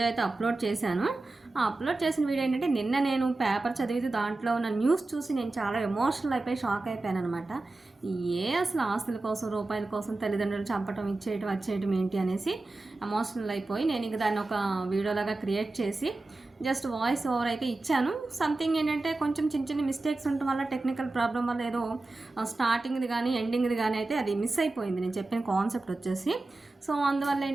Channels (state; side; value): quieter; left; 3.1 dB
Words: అయితే అప్లోడ్ చేశాను. ఆ అప్లోడ్ చేసిన వీడియో ఏంటంటే, నిన్న నేను పేపర్ చదివితే దాంట్లో ఉన్న న్యూస్ చూసి నేను చాలా ఎమోషనల్ అయిపోయి షాక్ అయిపోయాను అనమాట. అసలు ఆస్తుల కోసం, రూపాయల కోసం తల్లిదండ్రులు చంపటం, ఇచ్చేయటం, వచ్చేయటం ఏంటి అనేసి ఎమోషనల్ అయిపోయి నేను ఇంక దాన్ని ఒక వీడియోలాగా క్రియేట్ చేసి జస్ట్ వాయిస్ ఓవర్ అయితే ఇచ్చాను. సంథింగ్ ఏంటంటే కొంచెం చిన్న చిన్న మిస్టేక్స్ ఉండటం వల్ల, టెక్నికల్ ప్రాబ్లం వల్ల ఏదో స్టార్టింగ్ది కానీ ఎండింగ్ది కానీ అయితే అది మిస్ అయిపోయింది నేను చెప్పిన కాన్సెప్ట్ వచ్చేసి. సో అందువల్ల